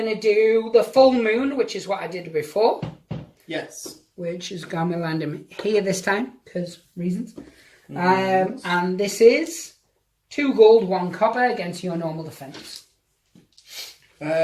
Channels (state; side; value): identical; both; correlation 1.00